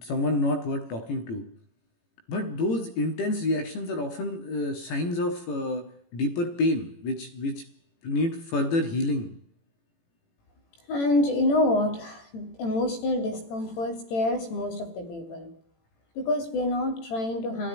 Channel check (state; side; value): late; right; 18 ms